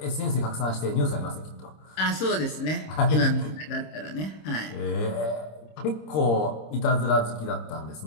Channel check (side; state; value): right; late; 26 ms